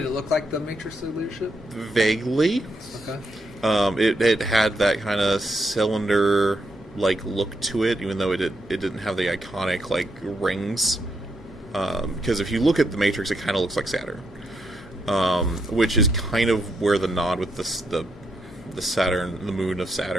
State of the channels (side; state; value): both; normal; correlation 0.79